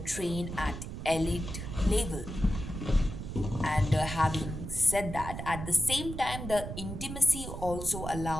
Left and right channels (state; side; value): noise; right; rumble, 7 dB below the sound